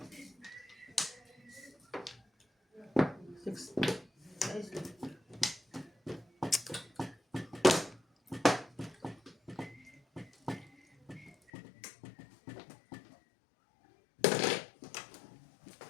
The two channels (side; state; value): right; drops out; at 11.5 s